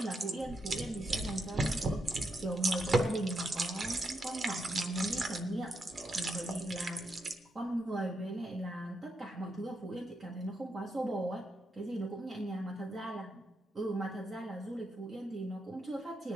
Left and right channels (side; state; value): both; normal; correlation 0.82